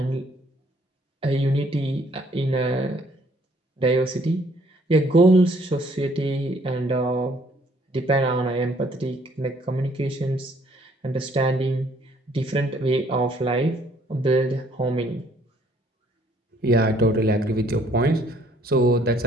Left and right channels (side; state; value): both; normal; correlation 0.63